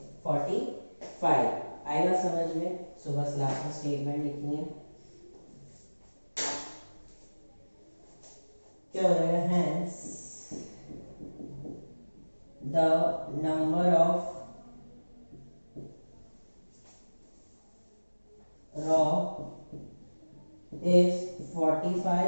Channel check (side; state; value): both; inverted; correlation -1.00